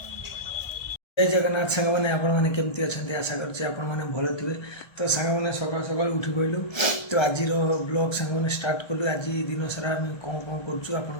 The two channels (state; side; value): late; right; 1.3 ms